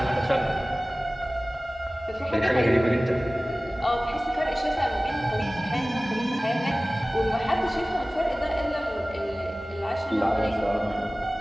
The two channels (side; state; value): both; normal; correlation 0.98